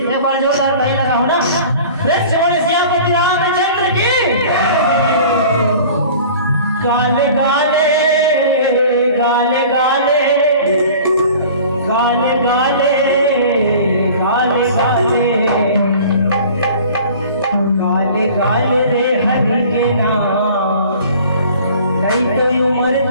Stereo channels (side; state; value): both; inverted; correlation -0.45